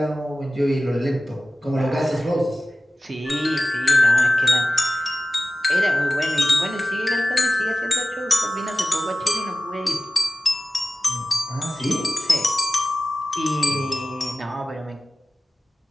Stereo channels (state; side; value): normal; both; correlation 0.95